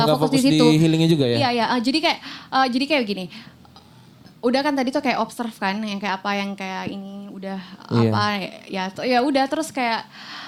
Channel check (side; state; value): both; identical; correlation 1.00